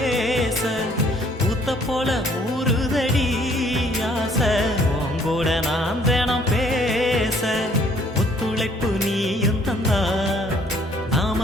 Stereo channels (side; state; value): both; normal; correlation 0.61